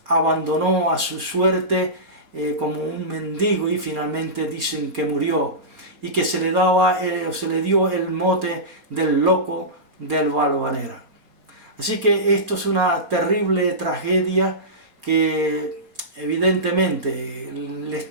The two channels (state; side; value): late; left; 4.3 ms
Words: abandonó a su suerte como un mendigo, y finalmente dicen que murió, y que se le dio el mote del loco del Valvanera. Así que esto es una terrible tragedia que evidentemente les